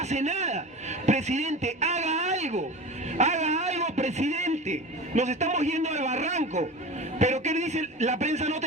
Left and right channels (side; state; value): both; normal; correlation 0.32